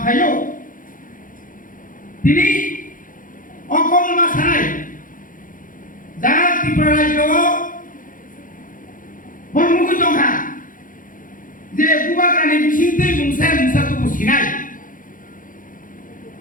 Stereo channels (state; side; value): late; right; 0.39 ms